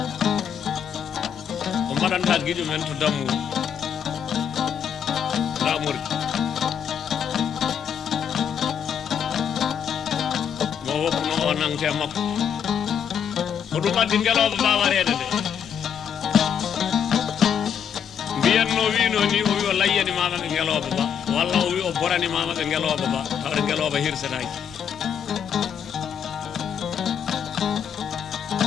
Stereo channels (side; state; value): right; quieter; 8.0 dB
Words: ko mbaɗanta guiƴo men to dammuɗo lamori mo woppuno o nangte makko ko ɗum addi ngeloɓe bawarede nde mbiyanno wino ni o wi o layyani mama ɓe ngeloɓe ba walla o wi o borani mama ɓe ngeloɓe ba tawde ngeloɓe hirsetaki